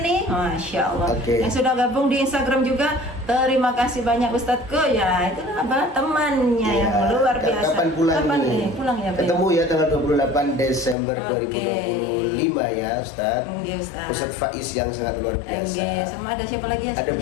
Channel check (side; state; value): right; drops out; at 11.0 s